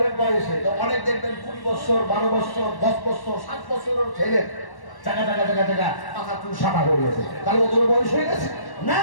বয়সে, তো অনেক দেখবেন 20 বছর 12 বছর 10 বছর 7 বছরের ছেলে চাকা চাকা চাকা চাকা মাথা চুল সাদা হয়ে গেছে, তাহলে ওদের বয়স হয়ে গেছে না।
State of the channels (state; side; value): late; right; 1.1 ms